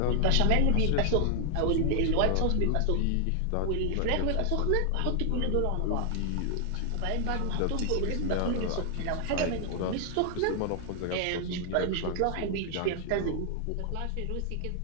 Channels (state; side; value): different; both; correlation 0.00